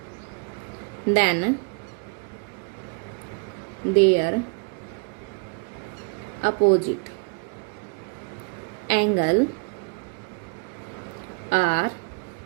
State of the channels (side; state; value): left; quieter; 35.3 dB